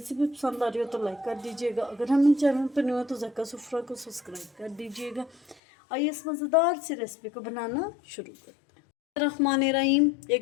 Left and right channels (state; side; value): drops out; right; at 5.6 s